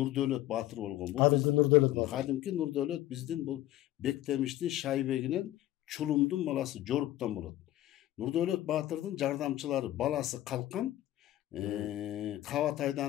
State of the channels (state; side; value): quieter; right; 14.5 dB